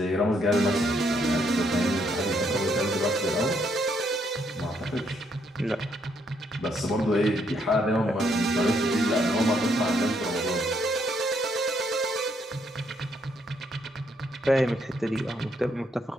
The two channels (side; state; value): both; normal; correlation 0.73